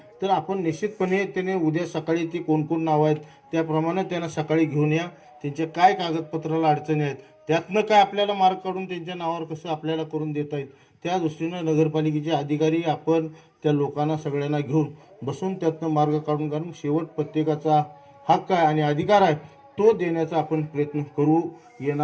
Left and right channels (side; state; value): both; identical; correlation 1.00